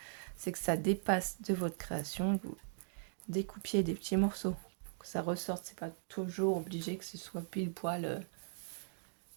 c'est que ça dépasse de votre création et que vous découpiez des petits morceaux. Que ça ressorte, c'est pas toujours obligé que ce soit pile poil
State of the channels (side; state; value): left; silent; digital silence